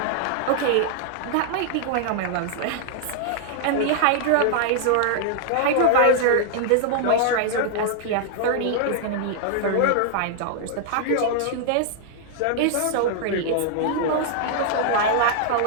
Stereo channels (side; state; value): both; different; correlation -0.01